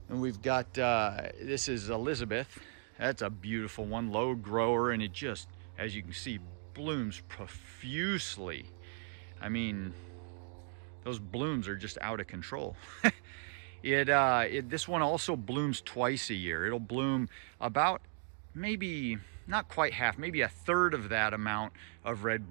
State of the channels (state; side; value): silent; left; 54 dB below the other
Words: And we've got this is Elizabeth. That's a beautiful one, low grower, and it just, as you can see, blooms profusely. I mean, those blooms are just out of control. This one also blooms twice a year. It'll bloom about maybe not quite half, maybe a third of that amount of red